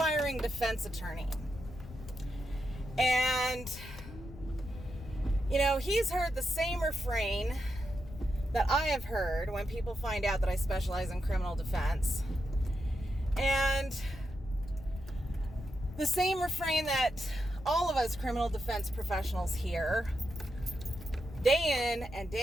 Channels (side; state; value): left; noise; rumble, 16 dB below the sound